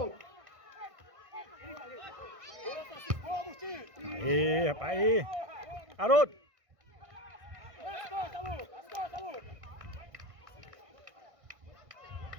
Aí, rapaz. Aí. Haroldo. As costas, Lucas.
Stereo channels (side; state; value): left; late; 1.5 ms